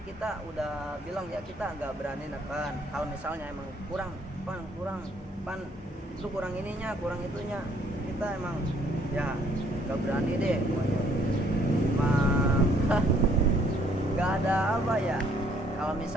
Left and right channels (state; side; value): normal; both; correlation 0.64